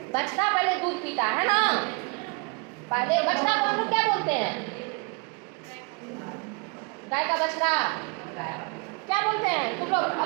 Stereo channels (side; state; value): left; quieter; 32.7 dB